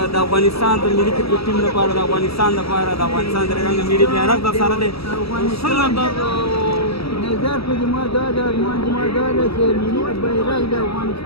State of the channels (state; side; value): late; right; 0.76 ms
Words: د افغانستان د ملي کرکټ ټیم لپاره، د افغانستان لپاره، د افغانستان د رنګ ملي بیرغ در سره دی؟ څنګه نظر په زما دا ده، ارمان زما دا ده چې ملي بیرغ د